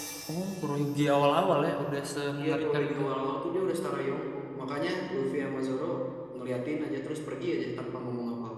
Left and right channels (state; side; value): identical; both; correlation 1.00